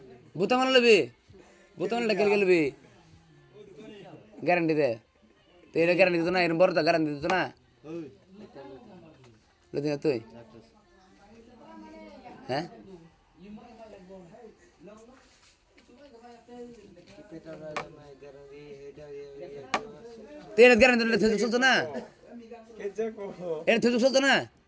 বুতা মানা লবি বুতা মানা গেল গেলবি গ্যারান্টি দে তো এটা গ্যারান্টি দিত না এরম বড়টা গ্যারান্টি দিত না লদি না তুই হ্যাঁ তেরে গ্যারান্টি দিলে তুই চলতো না এটা তুই চলতো না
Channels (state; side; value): identical; both; correlation 1.00